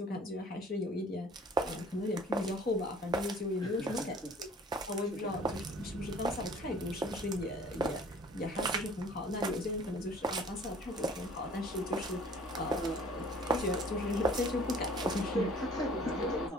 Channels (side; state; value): both; normal; correlation 0.51